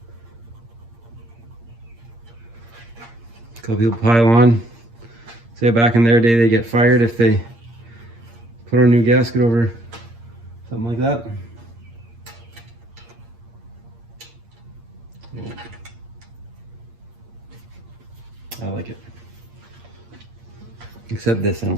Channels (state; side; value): late; left; 8.6 ms